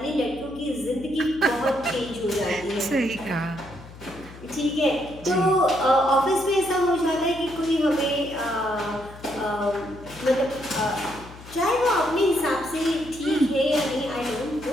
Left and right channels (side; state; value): left; noise; hum, 17 dB below the sound